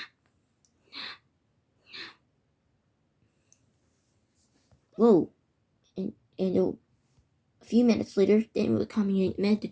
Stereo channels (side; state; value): both; identical; correlation 1.00